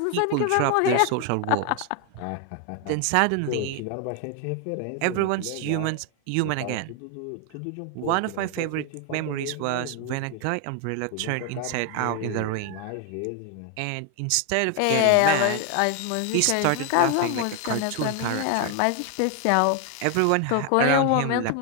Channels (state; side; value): different; both; correlation 0.01